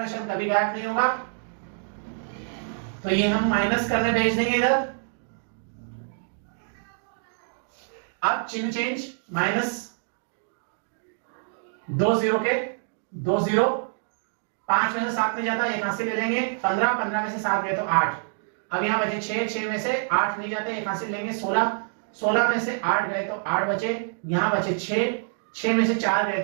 शब्द कभी गायब नहीं होगा, तो ये हम माइनस करने भेज देंगे इधर। अब चिन्ह चेंज, माइनस 2 0 के 2 0, 5 में से 7 नहीं जाता, एक हासिल ले लेंगे, 15, 15 में से 7 गए तो 8। अब यहां बचे 6, 6 में से 8 नहीं जाते, एक हासिल लेंगे, 16, 16 में से 8 गए तो 8 बचे, यहां बचे 6, 6 में से 4 गए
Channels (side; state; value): left; silent; digital silence